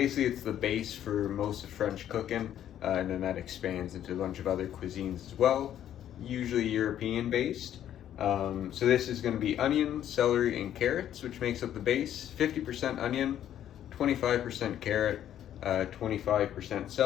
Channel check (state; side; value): quieter; right; 10.9 dB